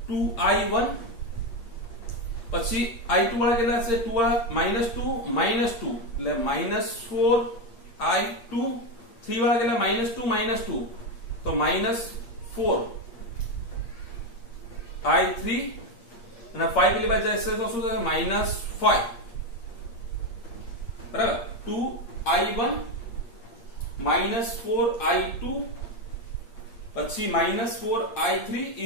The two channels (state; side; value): late; right; 8.5 ms